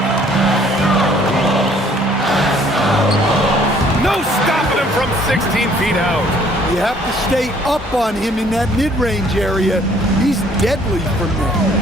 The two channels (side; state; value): both; normal; correlation 0.60